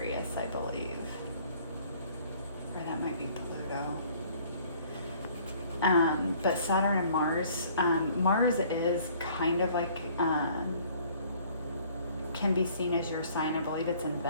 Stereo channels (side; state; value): both; inverted; correlation -0.56